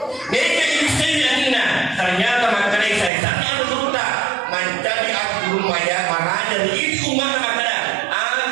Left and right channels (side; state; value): left; drops out; at 3.1 s